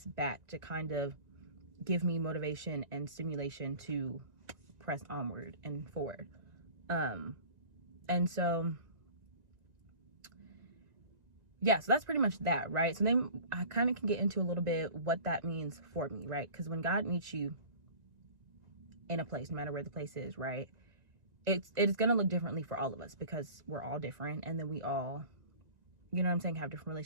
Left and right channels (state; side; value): late; left; 1.9 ms